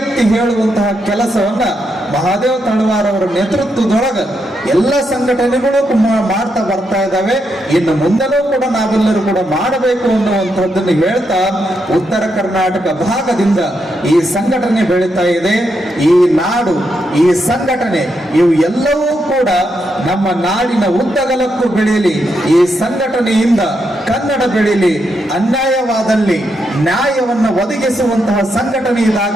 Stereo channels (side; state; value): both; normal; correlation 0.81